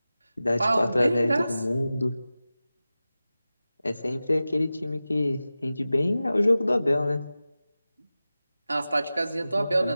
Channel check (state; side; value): inverted; both; correlation -0.95